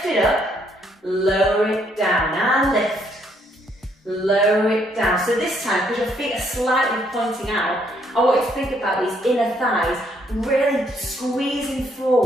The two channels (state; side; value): normal; both; correlation 0.70